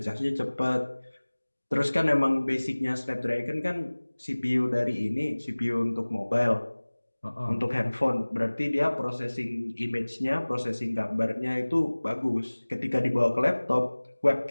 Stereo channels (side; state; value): both; inverted; correlation -1.00